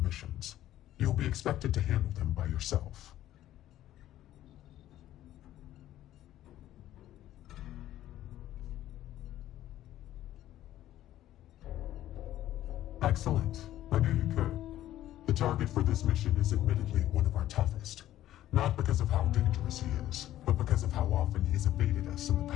You'll be expected to handle them by yourself. Excellent. I knew you could. The target for this mission is admittedly one of our toughest. Not because of how dangerous he is, but because of how often he's evaded us in the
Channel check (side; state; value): right; quieter; 13.3 dB